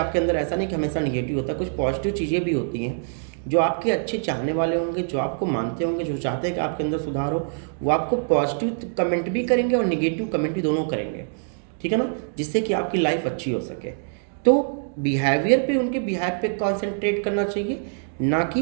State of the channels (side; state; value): left; silent; digital silence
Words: अंदर ऐसा नहीं कि हमेशा निगेटिव होता है, कुछ पॉजिटिव चीज़ें भी होती हैं। जो आपके अच्छे चाहने वाले होंगे, जो आपको मानते होंगे, जो चाहते हैं कि आपके अंदर सुधार हो, वो आपको पॉजिटिव कमेंट भी करेंगे और निगेटिव कमेंट भी दोनों करेंगे, ठीक है ना, जिससे कि आपकी लाइफ अच्छी हो सके। तो बिहेवियर पे, उनके बिहेव पे कॉन्सेंट्रेट करना चाहिए, ना कि